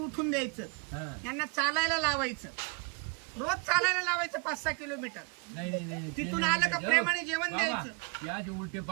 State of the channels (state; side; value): quieter; left; 30.8 dB